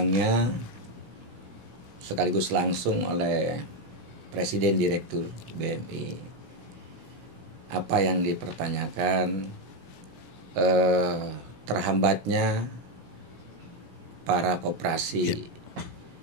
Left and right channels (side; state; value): left; late; 17 ms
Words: sekaligus langsung oleh Presiden Direktur BMI. Apa yang dipertanyakan terhambatnya para koperasi